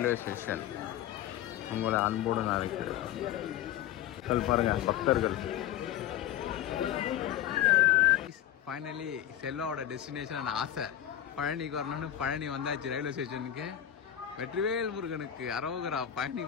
ஸ்டேஷன் உங்களை அன்போடு நான் இருக்கிறேன். பாருங்க பக்தர்கள். ஃபைனலி செல்வாவோட டெஸ்டினேஷன் ஆசை பழனிக்கு வரணும்னு பழனி வந்தாச்சு ரயில்வே ஸ்டேஷனுக்கு. வெற்றிவேல் முருகனுக்கு அரோகரா. பழனி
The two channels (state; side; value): quieter; right; 11.5 dB